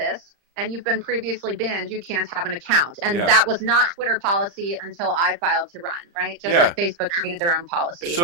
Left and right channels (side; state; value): left; late; 35 ms